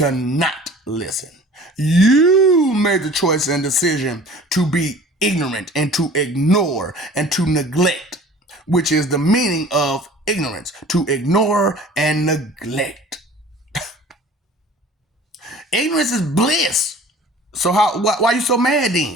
not listen. You made the choice and decision to be ignorant and to ignore and to neglect, which is the meaning of ignorance, to ignore and neglect. Ignorance is bliss. So why are you so mad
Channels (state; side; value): normal; both; correlation 0.46